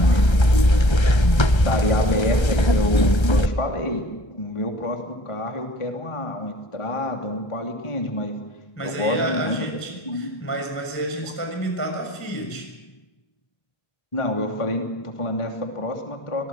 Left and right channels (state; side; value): late; right; 1.3 ms